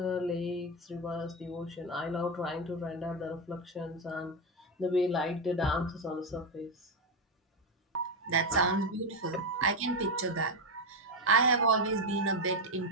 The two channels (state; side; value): normal; both; correlation 0.09